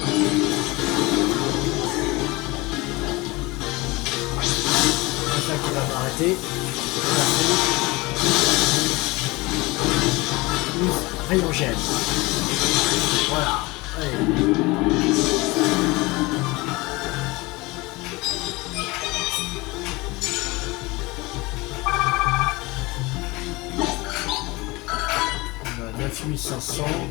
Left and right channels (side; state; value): right; quieter; 23.0 dB